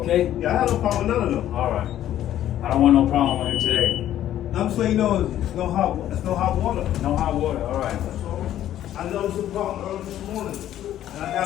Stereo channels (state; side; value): quieter; right; 12.0 dB